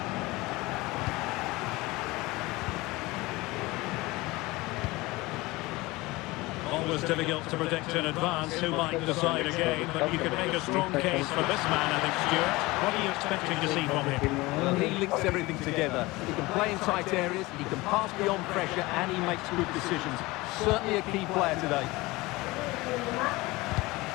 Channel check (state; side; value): quieter; right; 21.3 dB